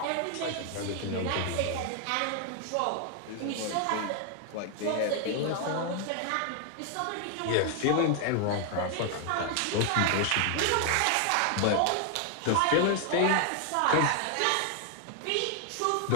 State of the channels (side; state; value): both; different; correlation 0.00